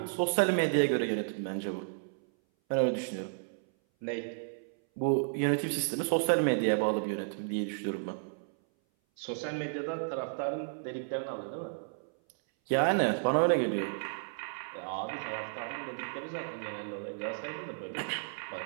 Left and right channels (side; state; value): left; silent; 56 dB below the other